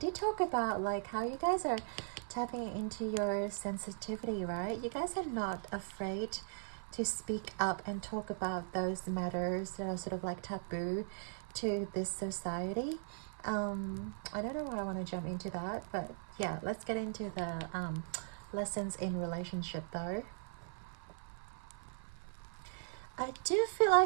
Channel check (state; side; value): silent; left; 52 dB below the other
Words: talk about like how you guys are tapping into your sensitivity, right? You guys are not afraid to speak up and talk about those matters that are sort of like taboo to this society. I don't know why I want to jump into that, but yeah, let's get into the lessons in relationship though. I do feel